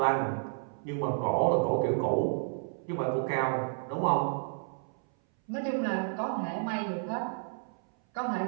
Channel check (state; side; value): silent; left; 57 dB below the other